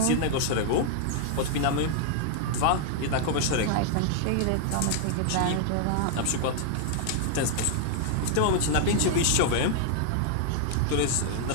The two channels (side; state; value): both; different; correlation 0.00